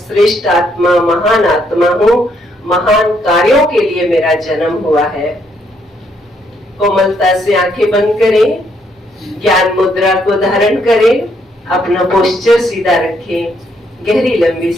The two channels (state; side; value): normal; both; correlation 0.72